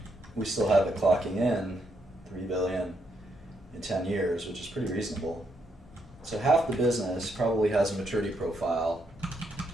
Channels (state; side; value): normal; both; correlation 0.77